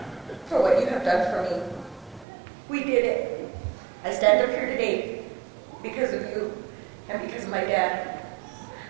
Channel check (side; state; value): left; drops out; at 2.2 s